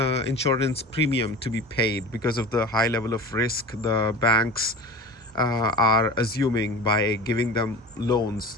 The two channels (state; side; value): normal; both; correlation 0.34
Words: premium to be paid because of the high level of risk the banks are assuming by giving them